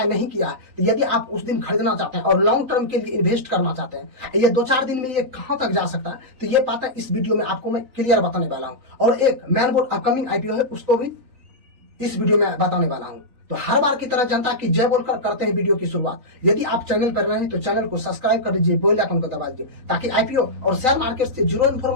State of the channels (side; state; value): left; late; 3.9 ms